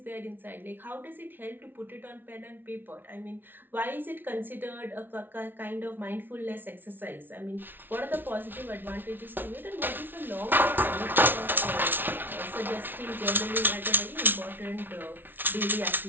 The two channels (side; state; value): left; late; 0.097 ms